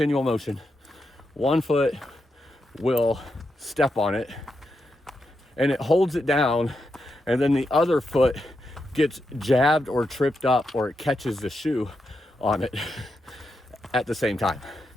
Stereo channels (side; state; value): both; normal; correlation 0.85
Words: motion. 1 foot will step on it and it holds it down, and then the other foot gets jabbed or tripped up, or it catches the shoe on it at the same time.